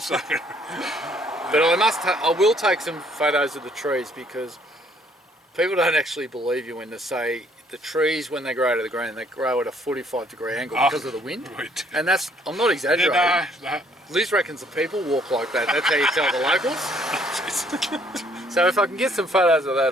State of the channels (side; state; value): both; normal; correlation 0.64